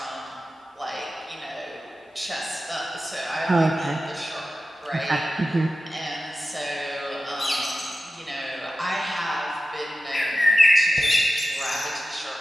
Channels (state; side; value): normal; both; correlation 0.92